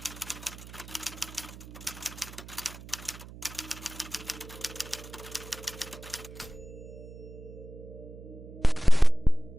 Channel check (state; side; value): noise; right; hum, 15 dB below the sound